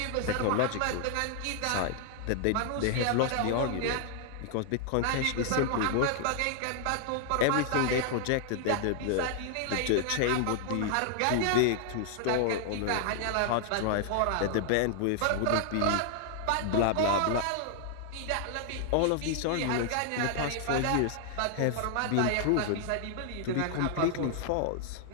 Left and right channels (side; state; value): both; different; correlation 0.00